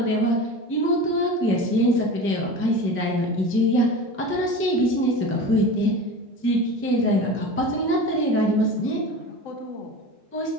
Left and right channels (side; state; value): both; normal; correlation 0.32